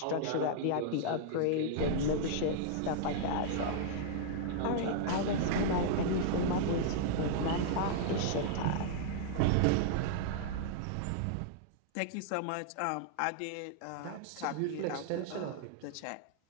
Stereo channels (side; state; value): both; different; correlation -0.01